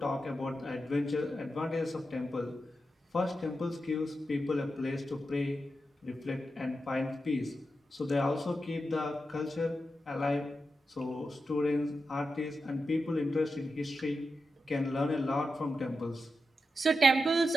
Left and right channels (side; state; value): both; normal; correlation 0.89